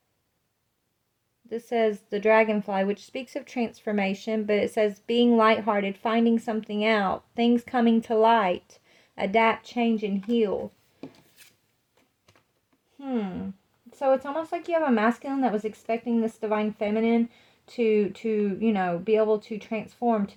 This says the dragonfly, which speaks of transformation, but it says being lighthearted, finding something out, things coming to light, adapt, change, and heal. So it's almost like you have a masculine that was expecting this divine feminine to you know, be able to transform,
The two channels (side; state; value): both; identical; correlation 1.00